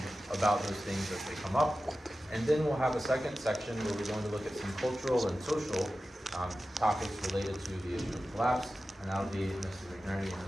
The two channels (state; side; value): normal; both; correlation 0.94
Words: about those things as they come up. And then we'll have a second section where we're going to look at some cultural and social topics related to the issue of collapse. And that'll be Mr. McNerney and